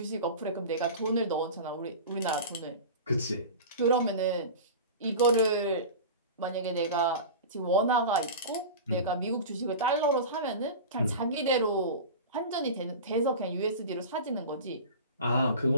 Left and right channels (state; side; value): inverted; both; correlation -0.31